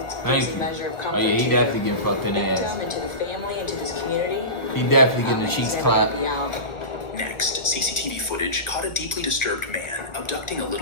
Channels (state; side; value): late; right; 1.4 ms